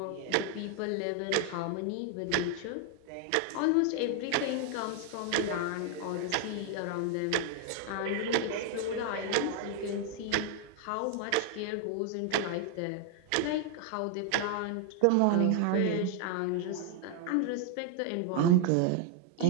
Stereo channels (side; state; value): both; different; correlation 0.01